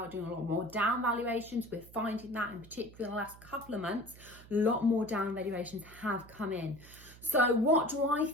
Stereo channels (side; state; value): right; noise; hum, 20 dB below the sound